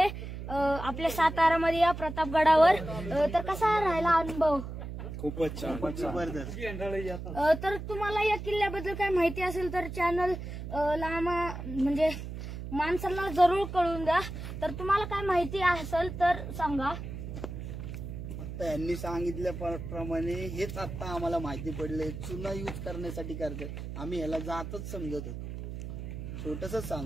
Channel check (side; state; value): right; noise; hum, 8 dB below the sound